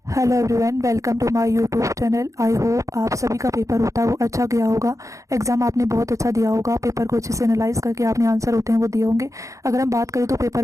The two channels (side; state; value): left; late; 0.15 ms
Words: Hello everyone, welcome to my YouTube channel. I hope आप सभी का पेपर होता है वो अच्छा गया होगा। एग्जाम आपने बहुत अच्छा दिया होगा, पेपर को अच्छे से एनालाइज करके आपने आंसर होते हैं वो दिए होंगे। अगर हम बात करें तो पेपर